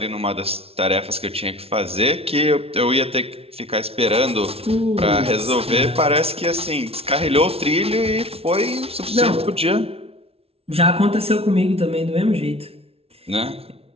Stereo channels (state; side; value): late; left; 0.29 ms